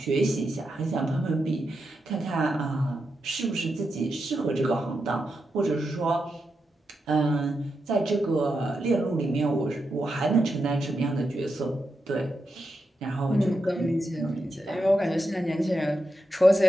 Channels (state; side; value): normal; both; correlation 0.86